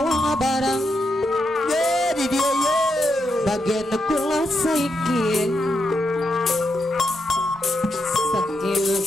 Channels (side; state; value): both; normal; correlation 0.83